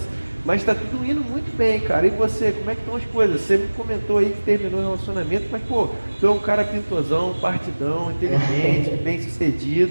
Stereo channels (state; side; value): inverted; both; correlation -1.00